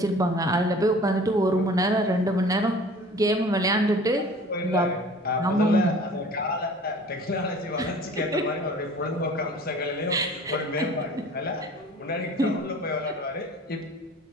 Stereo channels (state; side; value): normal; both; correlation 0.46